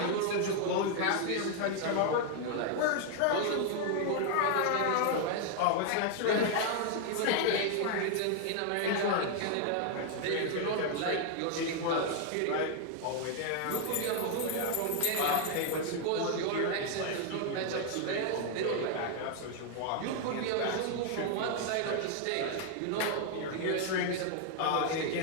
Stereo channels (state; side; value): different; both; correlation 0.00